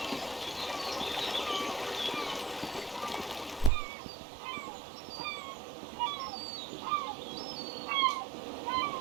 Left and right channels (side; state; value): left; drops out; at 3.7 s